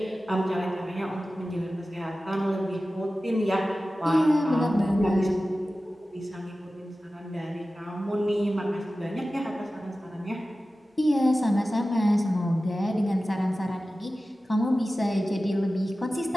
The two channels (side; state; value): both; normal; correlation 0.95